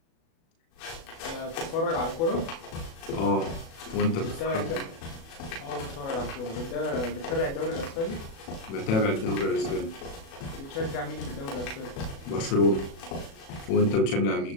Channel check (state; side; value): late; right; 36 ms